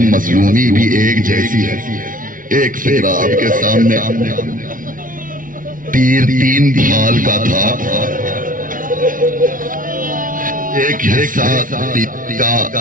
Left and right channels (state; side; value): late; left; 0.39 ms